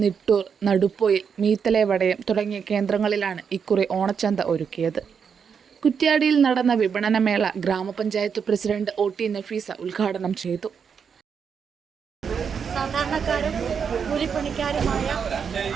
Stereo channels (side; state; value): left; quieter; 6.7 dB